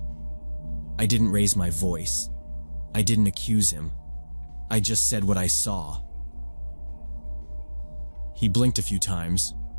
I didn't raise my voice. I didn't accuse him. I just said what I saw. He blinked a few times,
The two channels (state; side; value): inverted; both; correlation -1.00